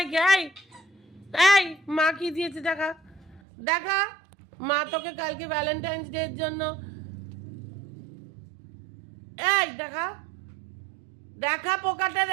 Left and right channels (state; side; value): drops out; left; at 3.4 s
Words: এই এই মা কি দিয়েছে দেখা, দেখা। মা তোকে কালকে ভ্যালেন্টাইন্স ডে এর জন্য, এই দেখা দেখা পোকাটা